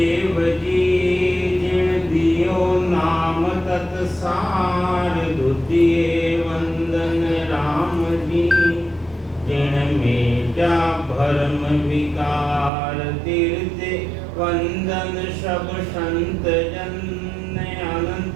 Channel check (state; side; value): drops out; left; at 12.7 s